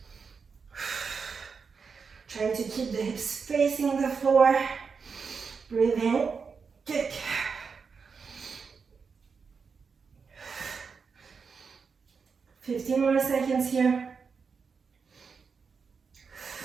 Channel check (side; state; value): left; quieter; 5.5 dB